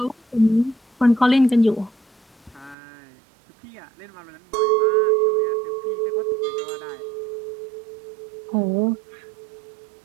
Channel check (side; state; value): left; drops out; at 2.8 s